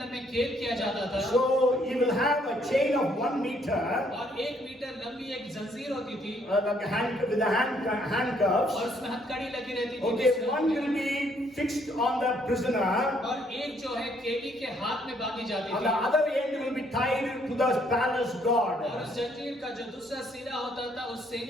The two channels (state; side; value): normal; both; correlation 0.68